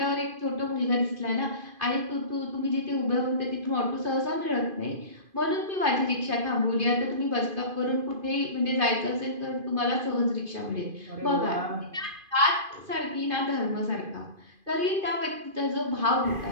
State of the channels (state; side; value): late; left; 2.5 ms